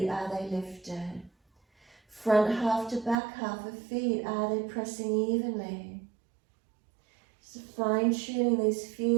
are they lifted? Front half to back half of feet, are they pressing evenly? So fine-tuning these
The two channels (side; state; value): left; drops out; at 3.2 s